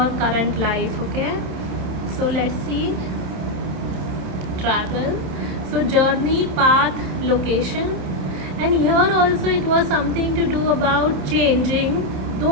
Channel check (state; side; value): late; left; 28 ms